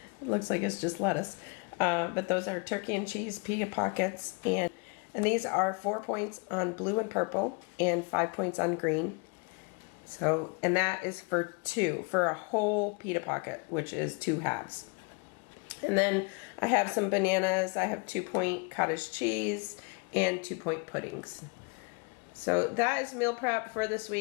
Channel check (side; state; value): right; quieter; 33.7 dB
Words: It looks like it's just lettuce. But those are turkey and cheese pita pockets. And these are 4 points on blue and purple and 5 points on green. So, and that is for a whole pita pocket, which is 2 halves. And then I have some bananas. I have 2-point cottage cheese and 2-point puddings. So that is meal prep for this